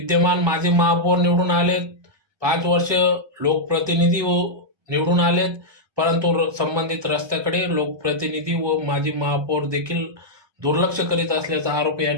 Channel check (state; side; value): late; left; 1.2 ms